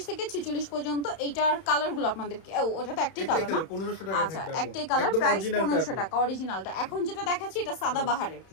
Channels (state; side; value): late; right; 31 ms